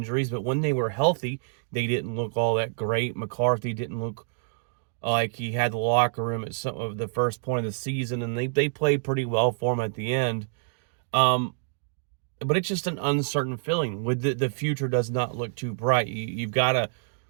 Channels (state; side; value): silent; left; digital silence